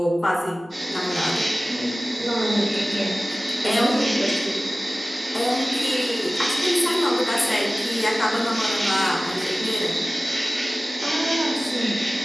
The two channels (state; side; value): normal; both; correlation 0.97